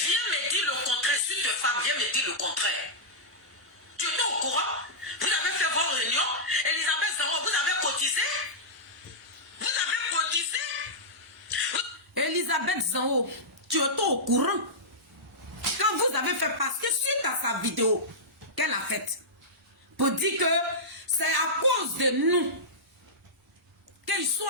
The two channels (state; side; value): normal; both; correlation -0.12